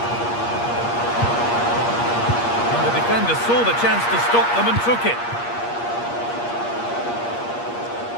And the defender saw the chance to stop them and took it.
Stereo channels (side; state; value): right; late; 8.5 ms